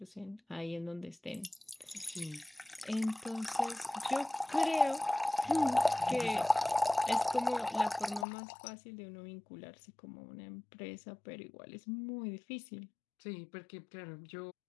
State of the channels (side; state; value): right; drops out; at 8.2 s